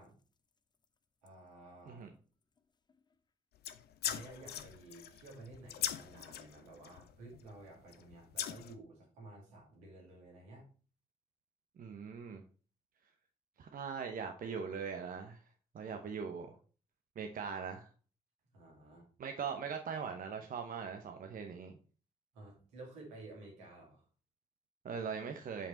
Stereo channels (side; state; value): both; normal; correlation 0.11